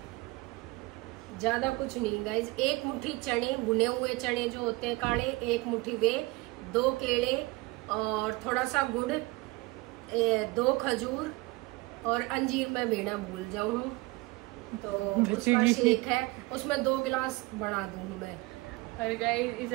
ज्यादा कुछ नहीं गाइस, 1 मुट्ठी चने, भुने हुए चने जो होते हैं काले, 1 मुट्ठी वे, 2 केले और थोड़ा सा गुड़, 2 खजूर और अंजीर मैं लेना भूल जाऊँ तो उसका शेक है, उसमें 2 गिलास बना दूँ मैं। और गाइस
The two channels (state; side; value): quieter; left; 22.7 dB